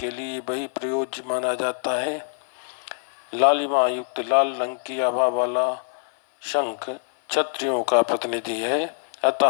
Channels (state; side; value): silent; right; 55 dB below the other